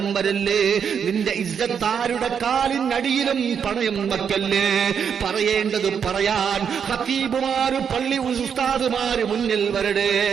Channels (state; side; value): quieter; left; 7.3 dB